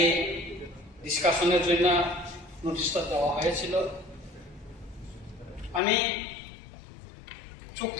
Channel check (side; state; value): right; drops out; at 5.8 s